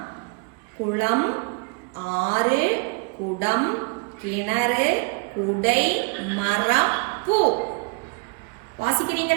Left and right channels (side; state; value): left; quieter; 32.3 dB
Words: குளம், ஆறு, குடம், கிணறு, குடை, மரம், பூ.